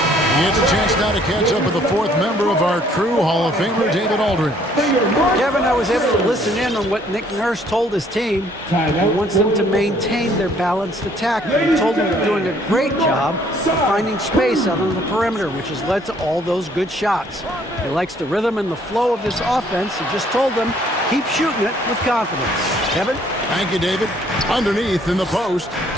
He gets a chance now to catch up with the fourth member of our crew, Hall of Famer David Aldridge. Kevin, I was able to listen in on what Nick Nurse told his team. He wants them to maintain their balanced attack. He told them they're doing a great job of finding space out on the perimeter, which has led to all those good shots. He likes the rhythm and the flow of this offense. He just told them, keep shooting it with confidence. Kevin? Thank you, David. Underneath in the post,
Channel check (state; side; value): normal; both; correlation 0.62